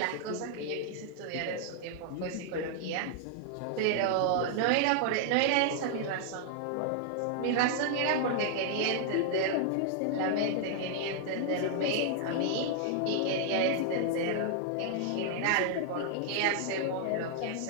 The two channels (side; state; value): both; different; correlation -0.01